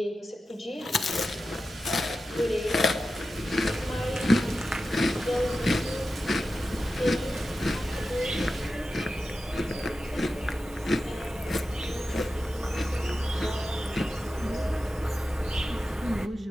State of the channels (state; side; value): normal; both; correlation 0.92